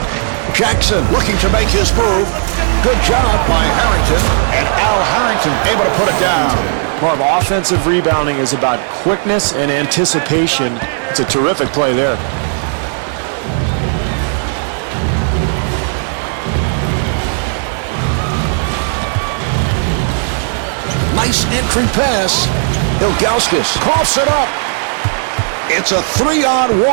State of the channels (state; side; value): silent; left; 66 dB below the other